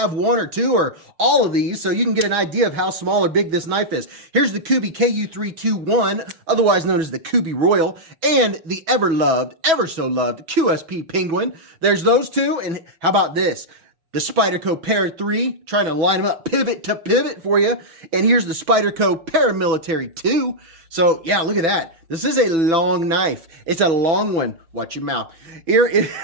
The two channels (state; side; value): late; left; 6.1 ms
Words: one or two or all of these so you can get an idea of how small or big this knife is. Here's the KUBEY KU321, otherwise known as the KUBEY Royal, and the ever-loved, ever-so-loved QSP Penguin. There's those two, and how about this? The Spyderco Para 3, trying to line them up pivot to pivot for you. And here's the Spyderco Paramilitary 2. So, yeah, look at that. This is a long knife. It's a long one. Watch your mouth. Here's